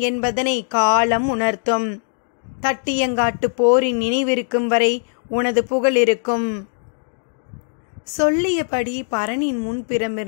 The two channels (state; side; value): silent; right; 65 dB below the other